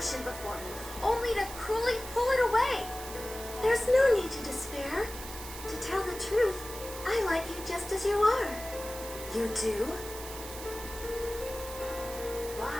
before me, only to cruelly pull it away? There's no need to despair. To tell the truth, I like you just as you are. You do?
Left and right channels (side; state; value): right; noise; hiss, 11 dB below the sound